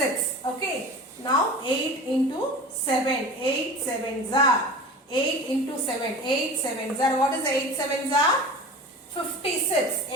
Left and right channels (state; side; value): normal; both; correlation 0.35